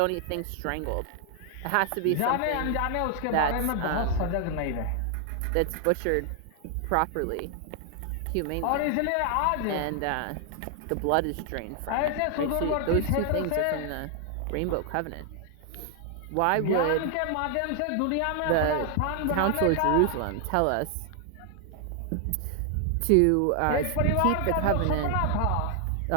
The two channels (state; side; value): different; both; correlation 0.00